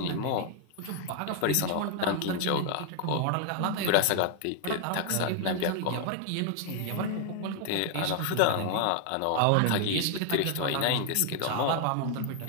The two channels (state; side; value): different; both; correlation 0.00